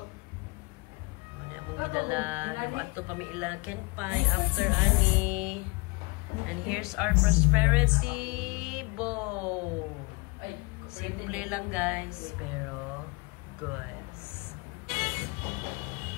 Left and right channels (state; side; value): quieter; right; 27.7 dB